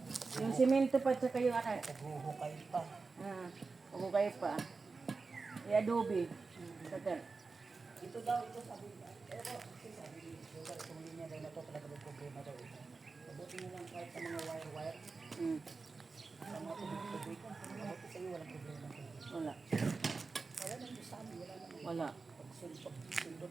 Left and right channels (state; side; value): quieter; left; 4.2 dB